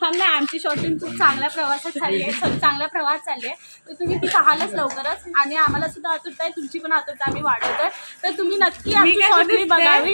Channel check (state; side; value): inverted; both; correlation -1.00